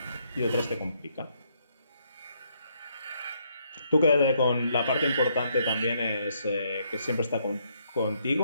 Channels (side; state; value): both; inverted; correlation -0.73